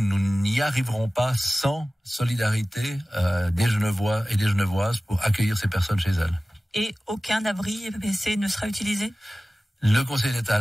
n'y arriverons pas sans solidarité des Genevois et des Genevoises pour accueillir ces personnes chez elles. Et aucun abri EPPC ne sera utilisé ? Le Conseil d'État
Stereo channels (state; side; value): normal; both; correlation 0.97